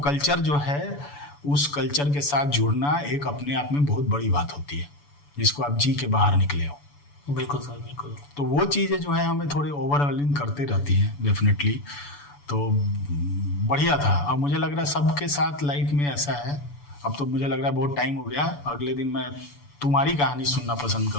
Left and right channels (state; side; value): late; right; 6.9 ms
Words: कल्चर जो है, उस कल्चर के साथ जुड़ना एक अपने आप में बहुत बड़ी बात होती है, जिसको आप जी के बाहर निकले हो। बिल्कुल सर, बिल्कुल। तो वो चीज़ें जो है हमें थोड़ी ओवरवेलमिंग करते रहती हैं डेफिनेटली। तो बढ़िया था। अब मुझे लग रहा है सबके साथ लाइफ में ऐसा है। अब तो मुझे लग रहा है बहुत टाइम हो गया, अगले दिन मैं तुम्हारी कहानी सुनना पसंद